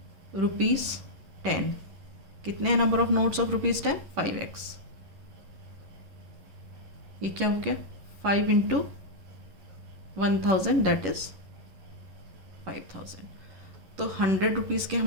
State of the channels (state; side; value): late; left; 11 ms